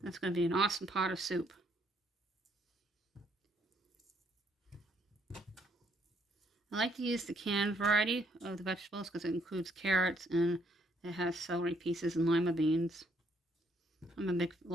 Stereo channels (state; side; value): normal; both; correlation 0.69